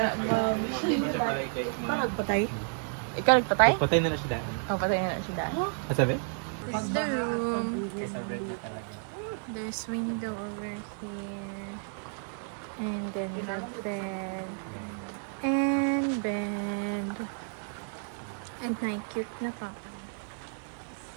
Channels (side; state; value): left; silent; 57 dB below the other